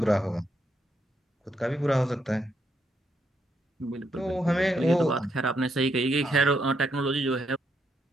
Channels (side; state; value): both; normal; correlation 0.78